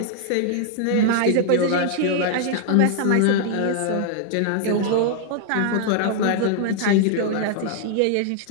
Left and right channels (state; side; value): different; both; correlation 0.00